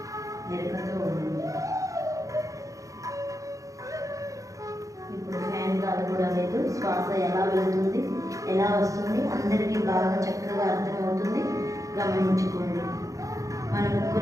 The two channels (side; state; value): left; late; 0.16 ms